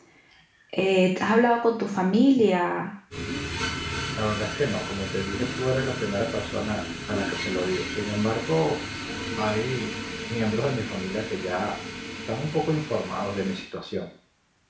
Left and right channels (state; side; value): identical; both; correlation 1.00